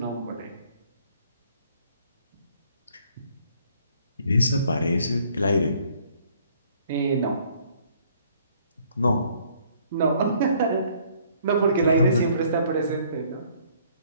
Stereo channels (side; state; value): both; inverted; correlation -0.62